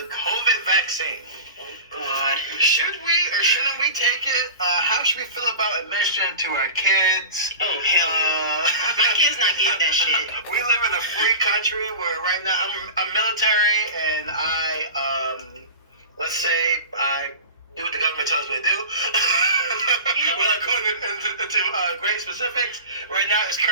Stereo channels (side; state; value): both; inverted; correlation -0.32